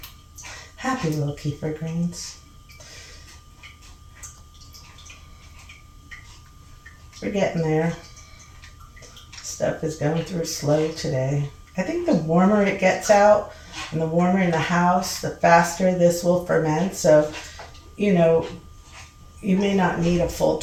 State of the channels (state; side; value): identical; both; correlation 1.00